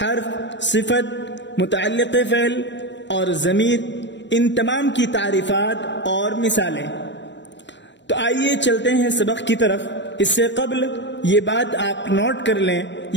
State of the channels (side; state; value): right; late; 0.53 ms